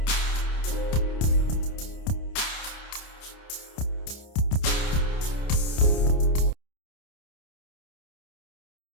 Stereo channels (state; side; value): late; right; 29 ms